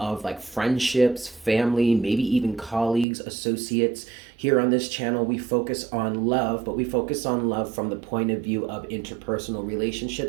like friendships, family, maybe even colleagues, associates. Here on this channel, we focus on love, but we focus on love from the point of view of interpersonal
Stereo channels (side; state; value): left; drops out; at 3.1 s